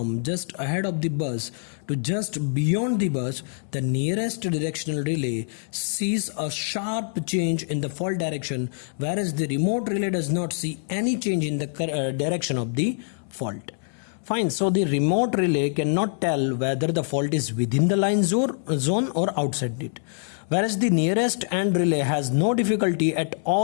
just ahead of the bus to just beyond the bus, the nearest directional relay sees a sharp change in the fault direction, whereas the remote relay does not see any change in the direction of the fault. Fine, so the remote relay cannot tell whether the fault is within the line zone or outside it, whereas the nearest end relay has no difficulty at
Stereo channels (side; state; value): right; silent; 62 dB below the other